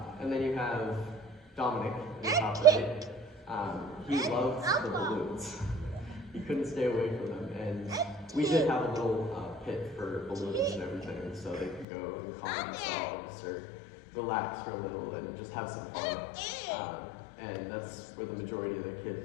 And then you have Dominic in the top right. He loved the balloons. He couldn't stay away from them. And we did have a little pit for balloons and everything, so they could go and calm themselves or relax for a little and just have some fun. And that's where the majority of the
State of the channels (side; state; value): right; drops out; at 11.9 s